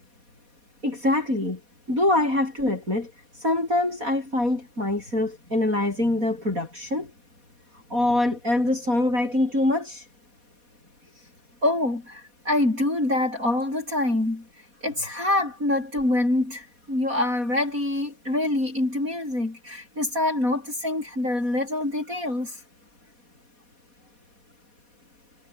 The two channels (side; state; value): left; late; 4.2 ms